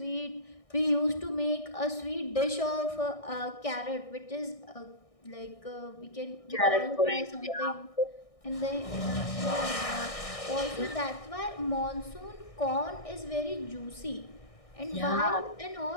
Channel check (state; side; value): late; right; 1.6 ms